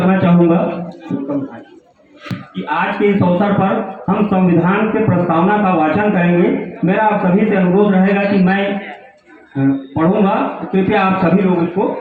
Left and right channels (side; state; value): both; identical; correlation 1.00